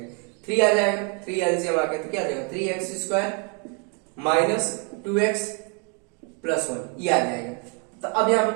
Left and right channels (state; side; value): quieter; left; 36.7 dB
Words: 3 आ जाएगा, 3 एलसीएम आ गया तो क्या आ जाएगा 3x स्क्वायर -2x प्लस 1 ये आ जाएगा। तो अब यहाँ